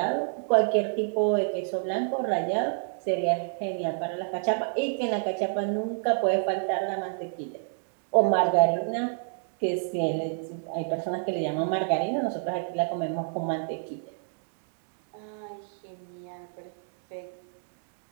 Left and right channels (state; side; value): silent; left; digital silence